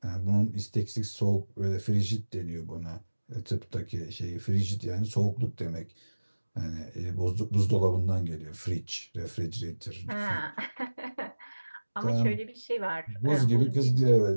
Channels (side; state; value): both; inverted; correlation -1.00